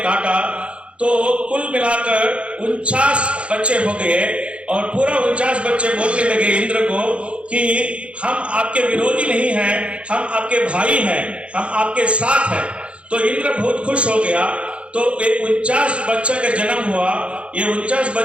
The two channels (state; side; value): late; left; 0.060 ms